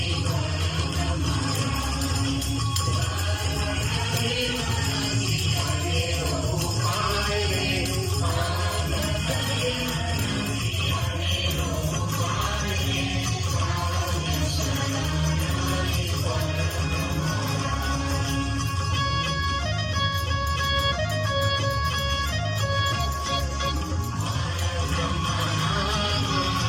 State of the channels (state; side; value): identical; both; correlation 1.00